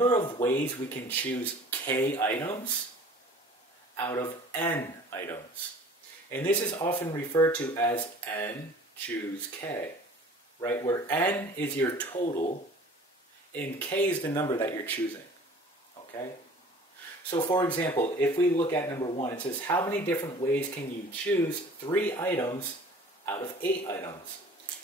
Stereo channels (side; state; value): both; normal; correlation 0.47